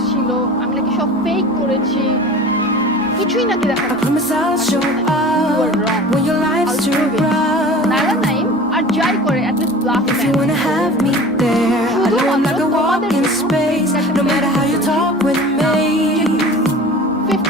ছিল, আমি নাকি সব ফেক করেছি, কিছুই নাকি দেখা নাইলা নাইম আর যাই করে at least bluff If you wanna have me there, I know I'm like a walk in space. No matter how you talk with me,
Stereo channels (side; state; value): both; normal; correlation 0.39